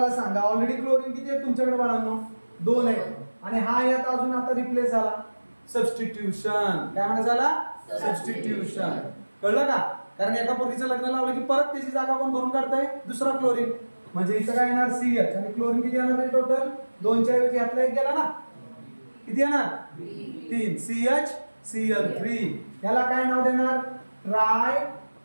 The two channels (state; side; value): inverted; both; correlation -1.00